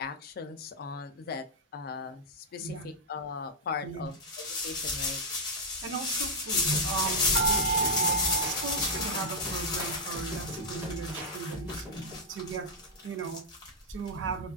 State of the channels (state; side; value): normal; both; correlation -0.03